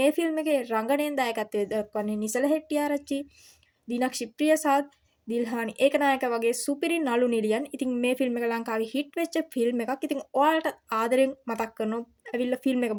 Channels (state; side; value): identical; both; correlation 1.00